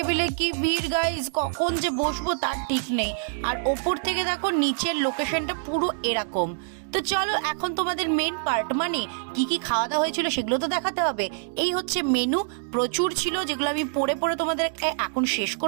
কি ভিড় গাইস, কখন যে বসবো তার ঠিক নেই। আর ওপর থেকে দেখো নিচের লোকেশনটা পুরো এরকম। তো চলো এখন তোমাদের মেন পার্ট, মানে কি কি খাওয়া দাওয়া হয়েছিল সেগুলো তো দেখাতে হবে। এই হচ্ছে মেনু, প্রচুর ছিল যেগুলো আমি পড়ে পড়ে তোমাদের এখন শেষ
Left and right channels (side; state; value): left; silent; digital silence